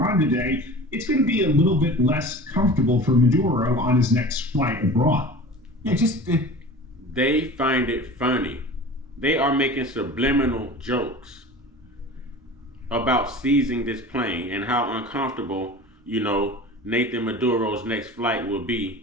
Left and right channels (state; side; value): normal; both; correlation 0.37